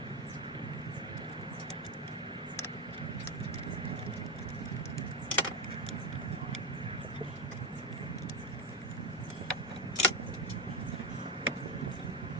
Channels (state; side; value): normal; both; correlation 0.12